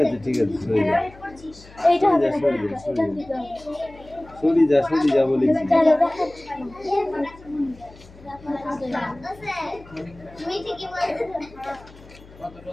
আছে ঠিক আছে, সরি যা বলেছি।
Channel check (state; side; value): noise; left; hum, 22 dB below the sound